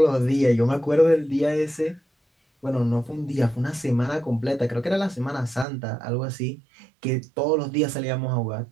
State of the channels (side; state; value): left; drops out; at 5.7 s